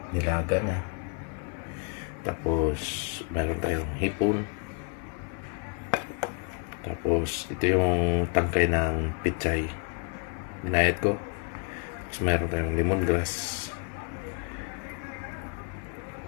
nilaga na. Tapos meron tayong hipon. Tapos ito yung tangkay ng pichay. Ginayat ko. Tapos meron tayong lemongrass,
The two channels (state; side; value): quieter; right; 38.4 dB